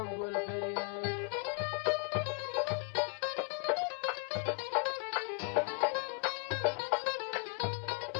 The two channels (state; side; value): quieter; right; 38.7 dB